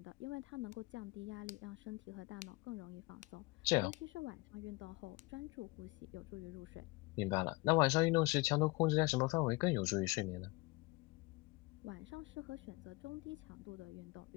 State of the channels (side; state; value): right; quieter; 23.8 dB